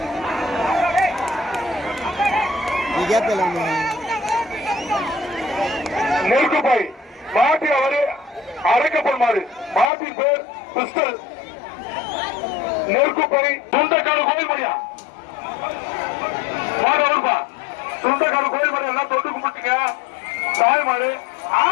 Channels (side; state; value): right; drops out; at 9.9 s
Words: நெருக்குப்பை மாட்டி அவரு அரைக்கப்படும் மாறு மாட்டின் பேர் பிஸ்டல் நெருக்குப்பை துண்டக்காடு கோயில் மணியா மாடு அவருப்பா துண்டக்காடு கோயில் மணி எல்லாம் தொட்டு கும்பிட்டீங்க தாய் மாடு